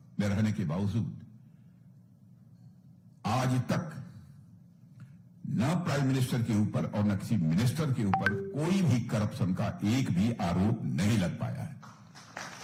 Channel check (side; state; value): both; identical; correlation 1.00